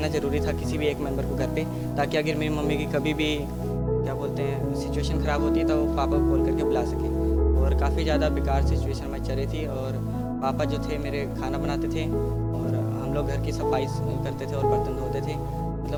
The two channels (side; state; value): both; identical; correlation 1.00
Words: ज़रूरी था, किसी भी एक मेंबर को घर पे, ताकि अगर मेरी मम्मी की कभी भी क्या बोलते हैं सिचुएशन ख़राब होती है तो वो पापा को कॉल करके बुला सके। और काफ़ी ज़्यादा बेकार सिचुएशन में चल रही थी, और पापा जो थे मेरे खाना बनाते थे और हम लोग घर की सफाई करते थे और बर्तन धोते थे,